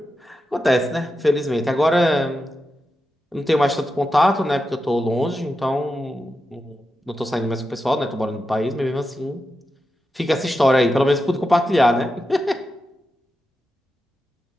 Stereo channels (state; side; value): normal; both; correlation 0.89